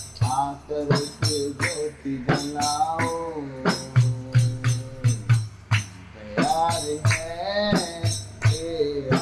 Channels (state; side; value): identical; both; correlation 1.00